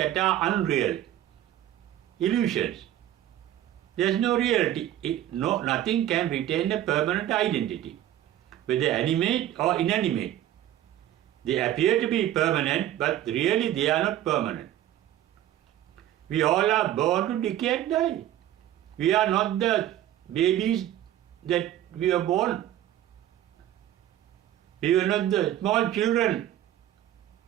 are unreal, illusions. There is no reality. Nothing can retain a permanent identity, whether animate or inanimate. They appear to be permanent, but really they are not permanent. We all are born to decay and die. We are not the babies that we were born. We were not the small children,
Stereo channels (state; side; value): quieter; left; 12.5 dB